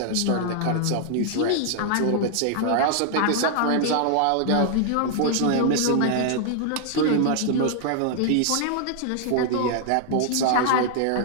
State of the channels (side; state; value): both; different; correlation 0.00